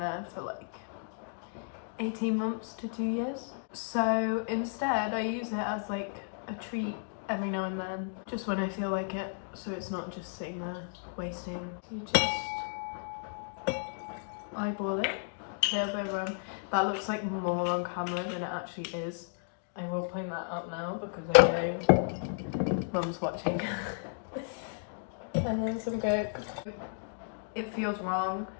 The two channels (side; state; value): right; silent; digital silence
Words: for like 18 months to 2 years. So instead I use it as like a treat every now and then, just when I feel like it, so it's not just sitting there wasting. You just eyeball it, a little bit of rum. That looks like more on camera than it actually is. I will point that out now because I know Mum's watching. And then some coke. It feels wrong